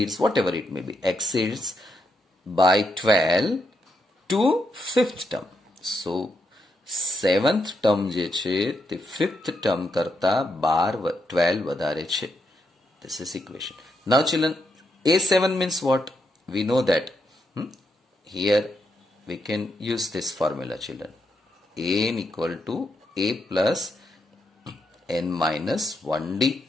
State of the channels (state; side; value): normal; both; correlation 0.80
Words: whatever it may be, exceeds by 12 to fifth term. So seventh term je છે તે fifth term કરતા 12 વધારે છે. This is equation. Now children, A7 means what? We know that here we can use this formula children. An equal to A plus n minus 1D.